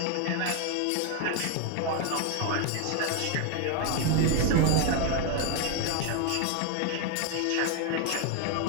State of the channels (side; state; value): both; different; correlation 0.01